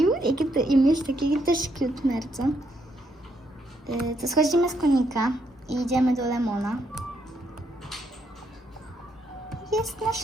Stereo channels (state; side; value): normal; both; correlation 0.75